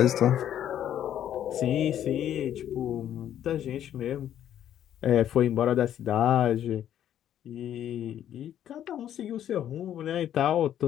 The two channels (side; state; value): right; quieter; 10.7 dB